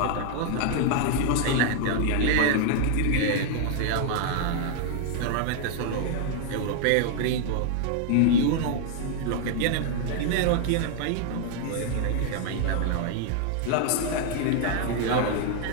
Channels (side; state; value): both; different; correlation 0.00